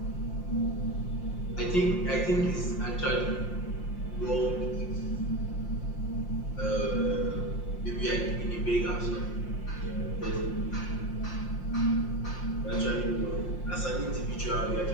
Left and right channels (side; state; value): right; late; 5.7 ms